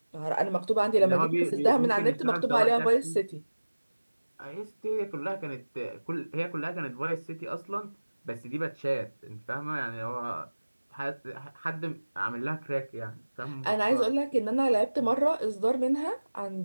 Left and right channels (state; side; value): inverted; both; correlation -1.00